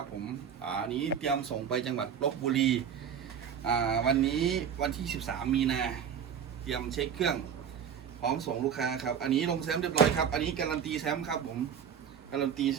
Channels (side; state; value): left; quieter; 8.0 dB